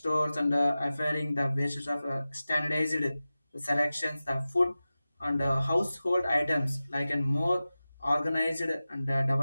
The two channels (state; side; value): inverted; both; correlation -0.95